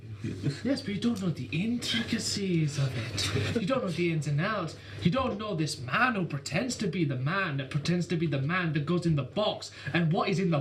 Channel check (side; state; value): both; identical; correlation 1.00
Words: Yes, but you don't know the intricacies of it. You don't know the ins and outs. You don't know this man who pretends to be the man that pretends to be the man that goes in the box. And what is in the